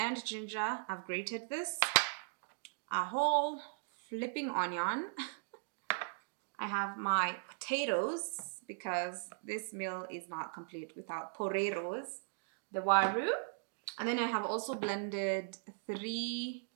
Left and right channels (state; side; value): silent; left; digital silence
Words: ginger. I've grated this. A whole flipping onion. I have my potatoes because this meal is not complete without poreros, the waru. And then I have also blended 3